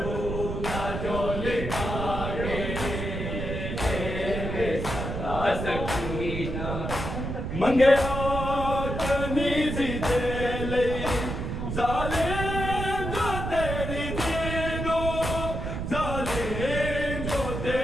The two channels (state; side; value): noise; right; rumble, 4 dB below the sound